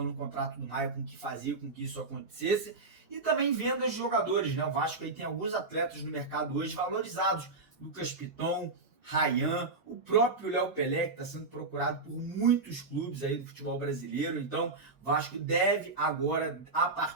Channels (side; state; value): left; quieter; 3.7 dB